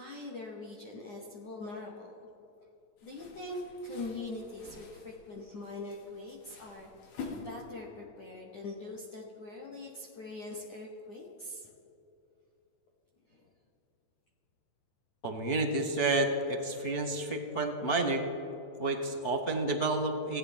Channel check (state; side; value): late; right; 8.9 ms